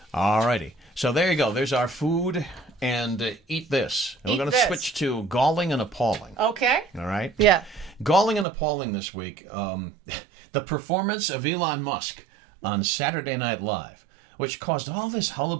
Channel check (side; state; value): left; drops out; at 8.5 s